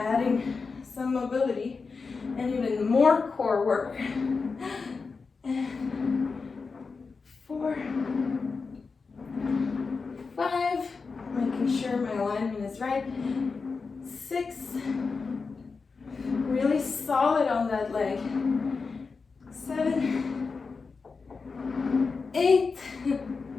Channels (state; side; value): quieter; right; 4.6 dB